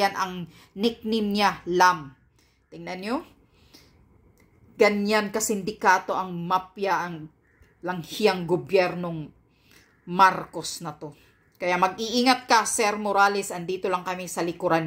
ang nickname niya, Lam. Tingnan nyo. Ganyan kasindikato ang mafia, ang langhiyang gobyernong Marcos na to. Kaya mag-iingat ka, Sir Morales. Andito lang kami sa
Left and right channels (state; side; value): identical; both; correlation 1.00